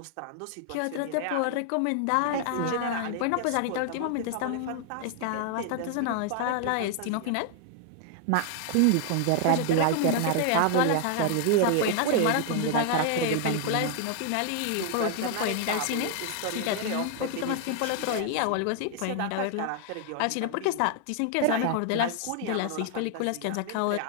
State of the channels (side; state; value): both; different; correlation 0.00